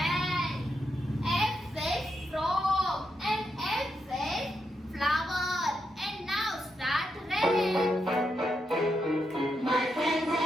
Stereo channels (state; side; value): normal; both; correlation 0.83